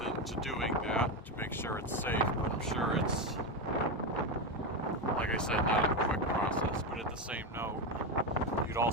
into doing that to make sure it's safe, but I'm sure it's, like I said, not a quick process. But at the same note, you'd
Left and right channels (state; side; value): normal; both; correlation 0.12